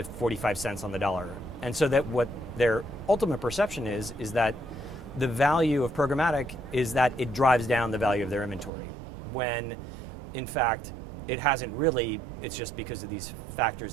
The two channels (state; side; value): drops out; left; at 8.7 s